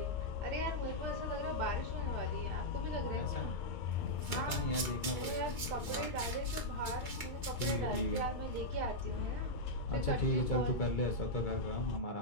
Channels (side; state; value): right; late; 2.3 ms